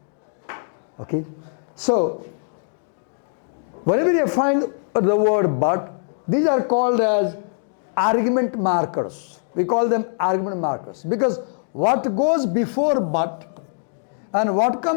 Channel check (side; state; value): right; silent; digital silence